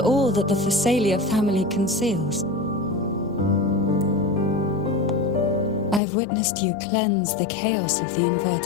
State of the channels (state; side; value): drops out; right; at 6.0 s